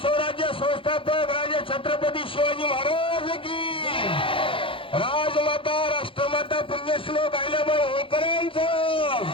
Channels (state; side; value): late; right; 0.25 ms